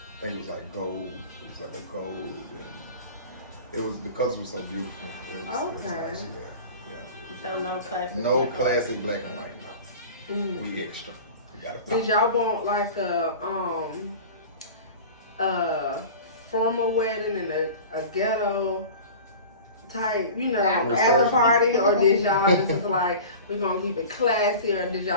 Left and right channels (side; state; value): both; inverted; correlation -0.37